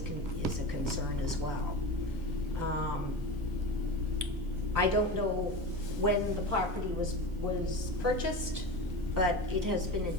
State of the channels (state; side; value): normal; both; correlation 0.27